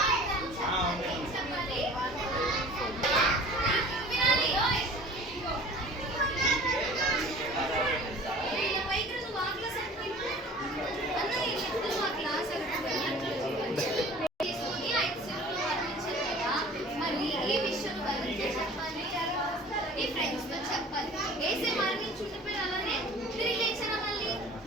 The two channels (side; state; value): both; normal; correlation 0.45